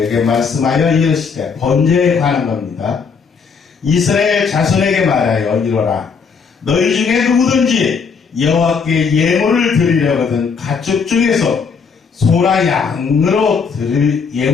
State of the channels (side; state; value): right; quieter; 5.6 dB